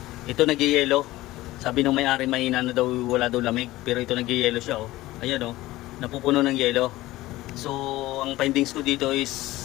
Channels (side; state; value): right; quieter; 17.5 dB